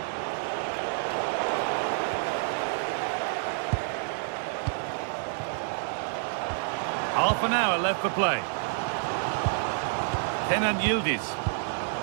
Half an hour left for play. Kenan Yildiz.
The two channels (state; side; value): silent; left; 59 dB below the other